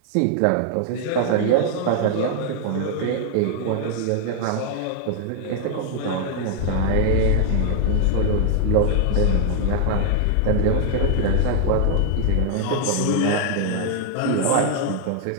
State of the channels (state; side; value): different; both; correlation 0.00